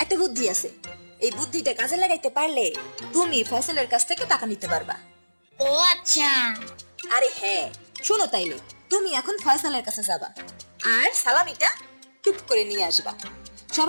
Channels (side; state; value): both; inverted; correlation -1.00